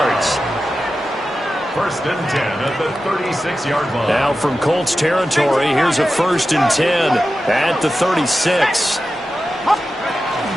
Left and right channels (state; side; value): normal; both; correlation 0.93